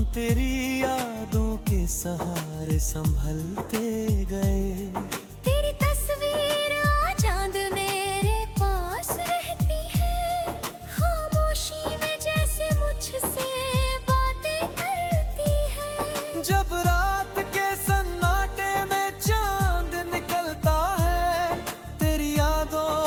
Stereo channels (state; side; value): identical; both; correlation 1.00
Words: तेरी यादों के सहारे संभलते गए। तेरी तस्वीर आज चांद मेरे पास रहती है, खामोशी में जैसे मुझसे बातें करती है। जब रात के सन्नाटे में चांद निकलता है, तेरी